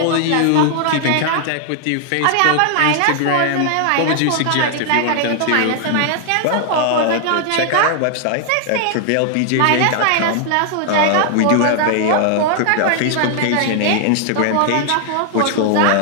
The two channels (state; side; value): different; both; correlation 0.00